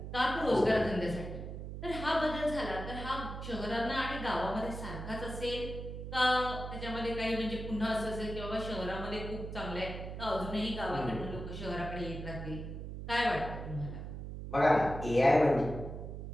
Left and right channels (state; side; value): noise; right; hum, 8 dB below the sound